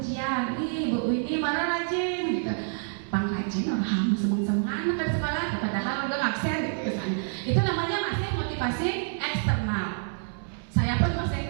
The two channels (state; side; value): silent; left; 60 dB below the other